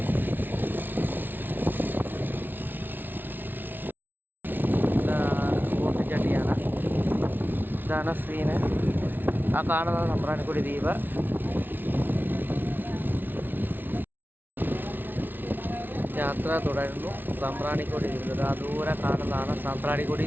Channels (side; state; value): left; late; 0.092 ms